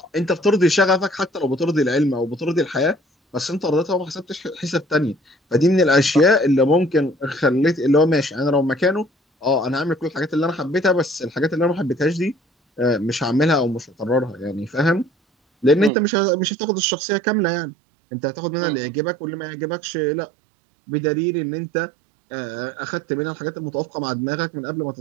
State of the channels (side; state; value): left; drops out; at 15.9 s